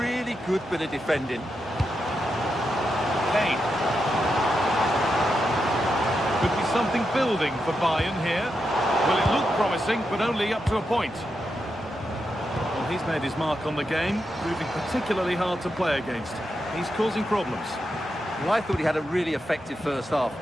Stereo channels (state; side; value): normal; both; correlation 0.86